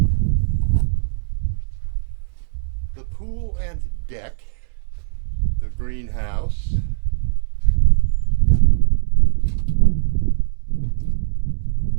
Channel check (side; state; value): left; silent; 65 dB below the other